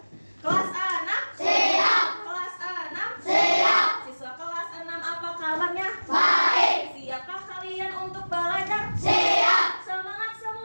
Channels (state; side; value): inverted; both; correlation -1.00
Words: Kelas 6. Siap. Kelas 6. Siap. Siswa kelas 6 apa kabarnya? Baik. Siapkah kalian untuk belajar? Siap. Semangat